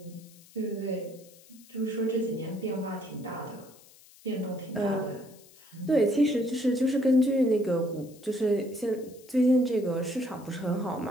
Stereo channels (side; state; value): left; noise; hiss, 24 dB below the sound